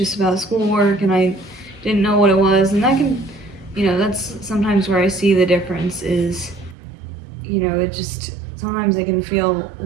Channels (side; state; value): left; drops out; at 6.8 s